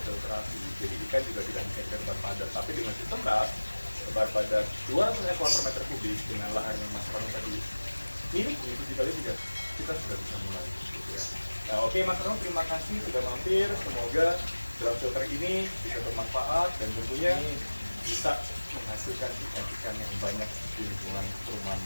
filtrasi, jadi ikan juga tidak bisa tebar padat. Tapi dengan sistem RAS tebar padat 200 ekor per meter kubik dengan lahan yang Mas Rano tadi miliki itu dikali juga kita sudah bisa mulai gitu ya. Nah oke Mas Rano, terima kasih sudah mampir, semoga drum filter ini bisa bermanfaat dan tentunya bisa menghasilkan ikan-ikan yang banyak di lingkungan perumahan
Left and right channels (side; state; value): both; inverted; correlation -1.00